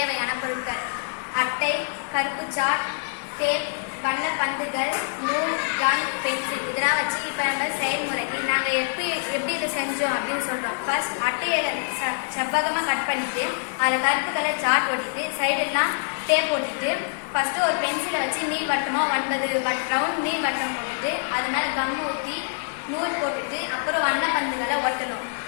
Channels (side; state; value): right; silent; digital silence